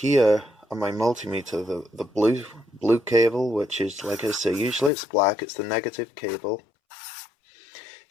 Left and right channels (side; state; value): right; drops out; at 4.9 s